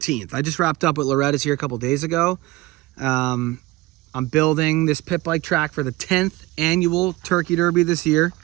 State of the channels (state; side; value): quieter; left; 19.6 dB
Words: I just wrapped up with Loretta's here a couple days ago. I'm building this pit bike track for the 10th annual Turkey Derby this year